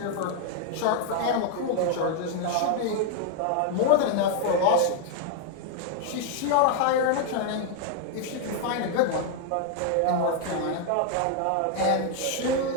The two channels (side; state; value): both; different; correlation 0.00